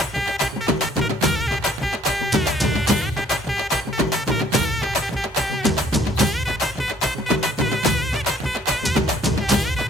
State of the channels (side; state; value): both; normal; correlation 0.61